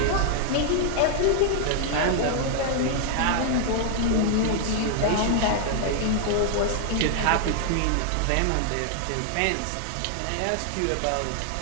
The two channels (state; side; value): different; both; correlation 0.00